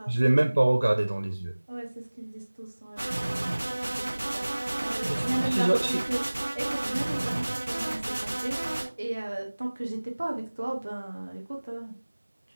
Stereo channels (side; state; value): both; inverted; correlation -1.00